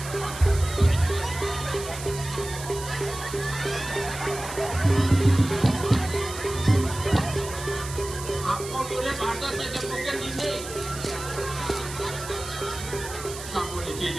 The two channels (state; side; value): noise; right; hiss, 11 dB below the sound